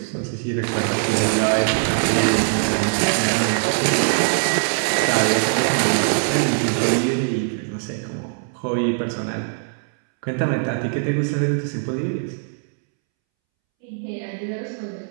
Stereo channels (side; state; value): left; silent; 65 dB below the other